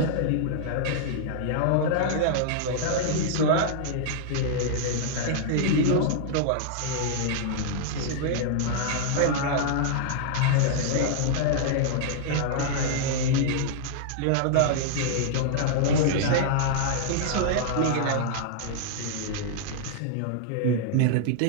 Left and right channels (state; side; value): different; both; correlation -0.01